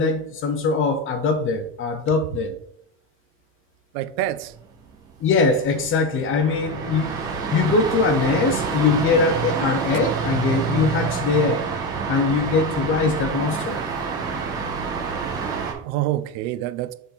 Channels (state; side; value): normal; both; correlation 0.16